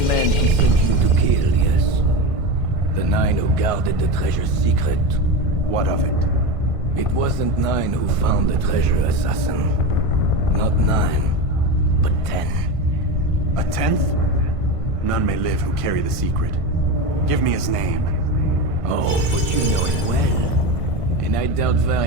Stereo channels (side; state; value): left; late; 1.5 ms